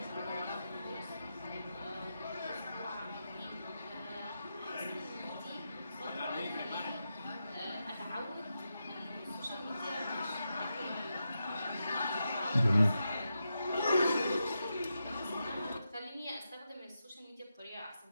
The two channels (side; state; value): both; inverted; correlation -0.88